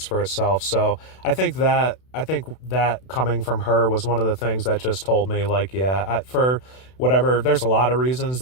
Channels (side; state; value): right; late; 32 ms